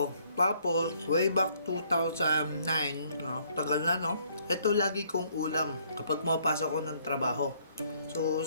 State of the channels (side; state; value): both; inverted; correlation -0.65